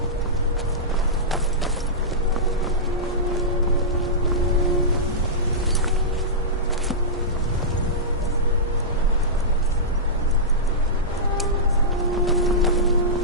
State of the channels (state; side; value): normal; both; correlation -0.15